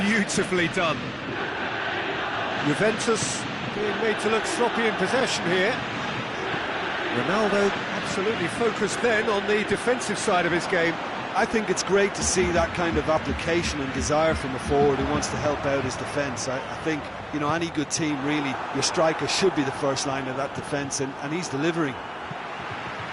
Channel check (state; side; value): identical; both; correlation 1.00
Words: Beautifully done. Juventus being made to look sloppy in possession here. Ronaldo absolutely focused then on the defensive side of his game. I think it's great to see that kind of application and desire from a forward who wants to help out his defence. I think, you know, any good team, really, your striker should be the first line of that defence, and he's delivering.